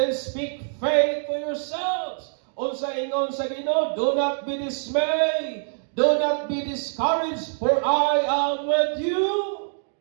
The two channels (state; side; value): silent; left; digital silence